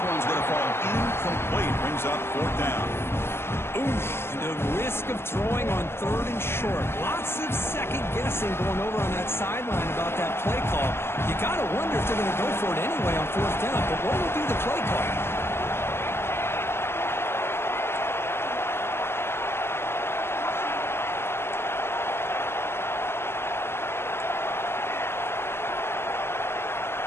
going to fall incomplete. brings up 4th down. Oof, the risk of throwing on 3rd and short. Lots of second guessing going over on that sideline about that play call. You got to wonder if they're going to go for it anyway on 4th down, but what will be the play call?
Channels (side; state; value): right; late; 0.12 ms